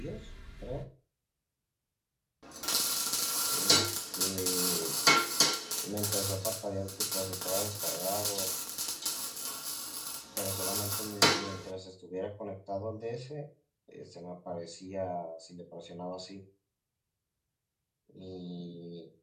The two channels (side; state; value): both; identical; correlation 1.00